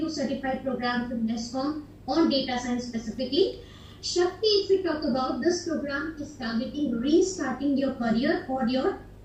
certified programs with NASSCOM on data science specifically. Shakti, if we talk about, this program is targeting restarting your career or your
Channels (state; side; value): identical; both; correlation 1.00